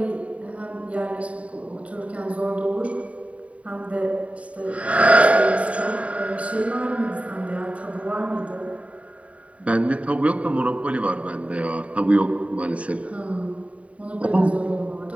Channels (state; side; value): late; left; 0.066 ms